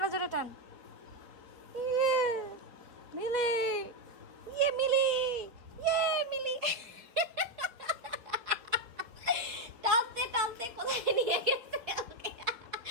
জোরে টান। ইয়ে মিলি, ইয়ে মিলি, ইয়ে মিলি। টানতে টানতে কোথায় নিয়ে গেছে ওকে।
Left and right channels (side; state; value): left; late; 4.3 ms